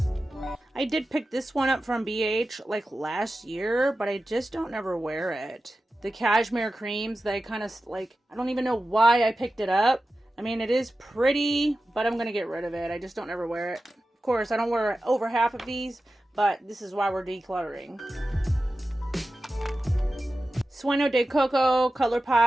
I did pick this one up from BH like last year, but I just don't ever wear it. The cashmere creams, they kind of like, I don't even know why I picked it up. I mean, it is pretty, but I'm going to get rid of it. I just don't ever wear it. Of course, I don't wear over half of these, but this is why we're decluttering. Sueño de Coco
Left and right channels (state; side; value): normal; both; correlation 0.93